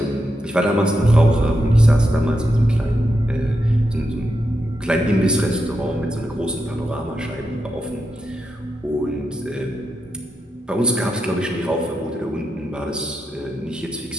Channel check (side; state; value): both; normal; correlation 0.85